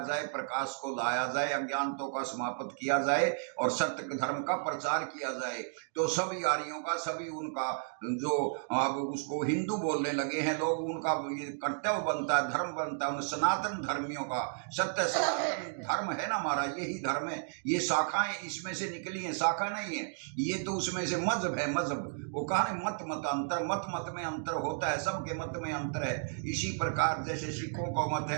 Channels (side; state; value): left; silent; digital silence